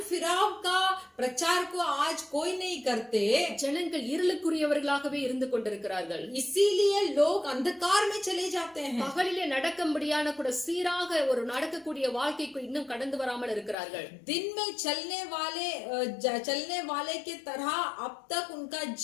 फिराव का प्रचार को आज कोई नहीं करते, ஜனங்கள் இருளுக்குரியவர்களாகவே இருந்து கொண்டிருக்கிறார்கள். इसीलिए लोग अंधकार में चले जाते हैं। பகலிலே நடக்கும்படியான கூட சீராக ஒரு நடக்கக்கூடிய வாழ்க்கைக்கு இன்னும் கடந்து வராமல் இருக்கிறார்கள். दिन में चलने वाले के तरह अब तक उनका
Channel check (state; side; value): drops out; right; at 13.8 s